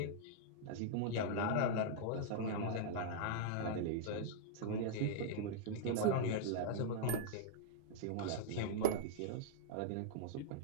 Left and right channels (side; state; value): both; different; correlation -0.01